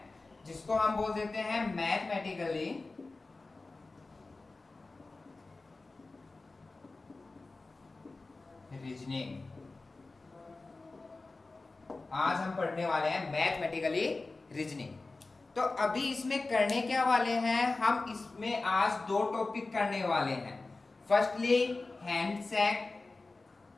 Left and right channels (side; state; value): right; quieter; 3.5 dB